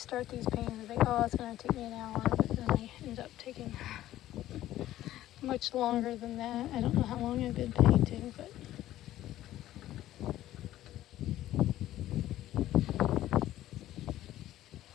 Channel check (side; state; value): right; quieter; 13.9 dB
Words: these paintings, I think, oh, it's going to take me an hour, but then I end up taking much longer than that. I don't know how long I've been painting, but